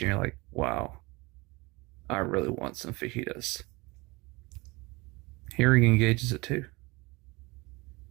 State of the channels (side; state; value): left; quieter; 24.4 dB